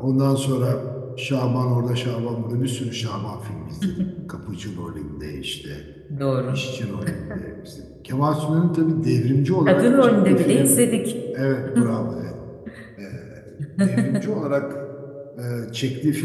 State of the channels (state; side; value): identical; both; correlation 1.00